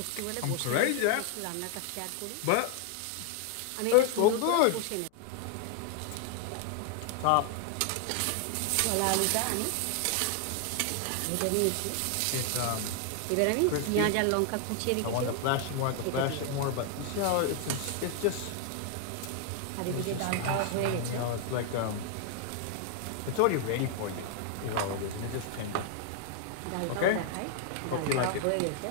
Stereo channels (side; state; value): both; different; correlation 0.00